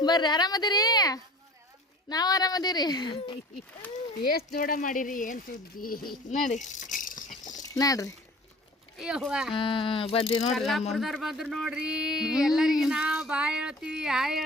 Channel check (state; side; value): normal; both; correlation 0.44